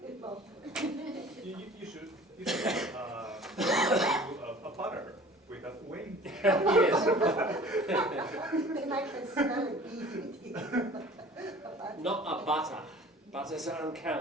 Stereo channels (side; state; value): both; normal; correlation 0.46